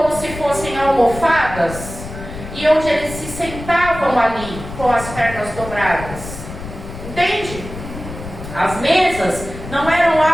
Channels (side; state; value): left; noise; rumble, 11 dB below the sound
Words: se fossem almofadas, e onde eles se sentavam ali com as pernas dobradas. Entende? As mesas não eram